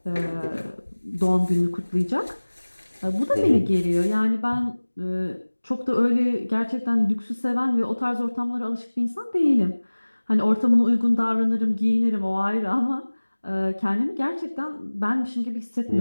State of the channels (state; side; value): inverted; both; correlation -1.00